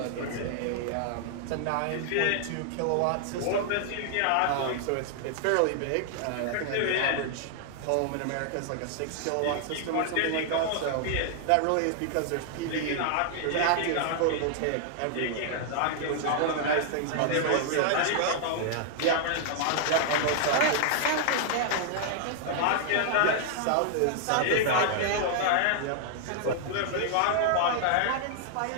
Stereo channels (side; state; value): both; different; correlation -0.01